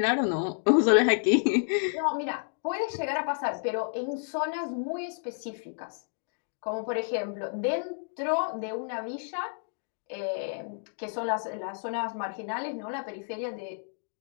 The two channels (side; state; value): right; silent; digital silence